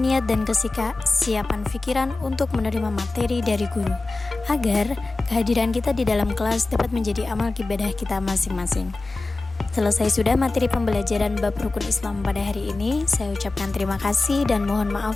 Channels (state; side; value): quieter; right; 3.3 dB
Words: niat dan kesiapan pikiran untuk menerima materi dari guru, agar kehadiran kita di dalam kelas dapat menjadi amal ibadah kita masing-masing. Selesai sudah materi pembelajaran bab rukun Islam pada hari ini. Saya ucapkan terima kasih dan mohon